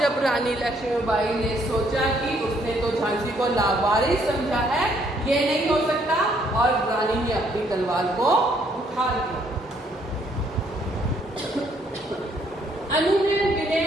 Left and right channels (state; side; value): normal; both; correlation 0.68